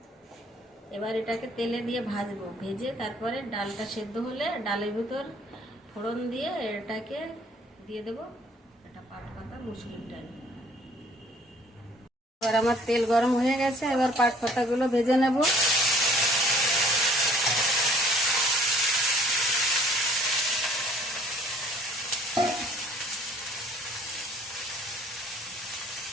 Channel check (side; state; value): both; normal; correlation 0.57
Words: এবার এটাকে তেলে দিয়ে ভাজবো, ভেজে তারপরে ডালটা সেদ্ধ হলে ডালের ভিতর ফোড়ন দিয়ে এটাকে দিয়ে দেবো। এটা পাট পাতা মুসুরির ডাল। এবার আমার তেল গরম হয়ে গেছে, এবার পাট পাতাগুলো ভেজে নেব।